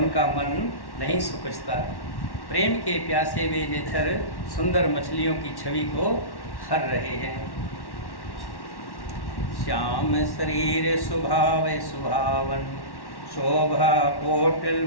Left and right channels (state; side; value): late; right; 1.1 ms